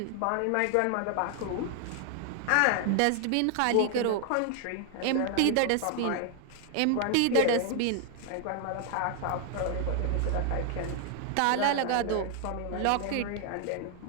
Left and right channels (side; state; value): both; different; correlation 0.00